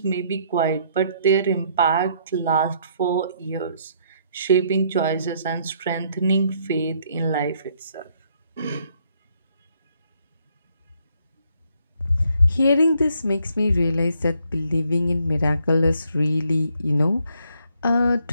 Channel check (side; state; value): both; inverted; correlation -0.69